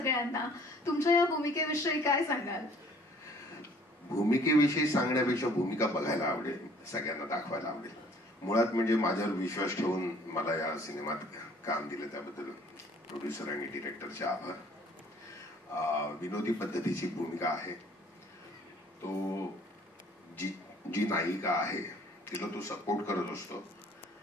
तुमच्या या भूमिकेविषयी काय सांगाल? भूमिकेविषयी सांगण्यापेक्षा भूमिका बघायला आवडेल, सगळ्यांना दाखवायला आवडेल. मुळात म्हणजे माझ्यावर विश्वास ठेवून मला या सिनेमात काम दिलं त्याबद्दल प्रोड्युसर आणि डिरेक्टरचे आभार. विनोदी पद्धतीची भूमिका आहे. तो जी नायिका आहे तिला तो सपोर्ट करत असतो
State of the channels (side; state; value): both; normal; correlation 0.56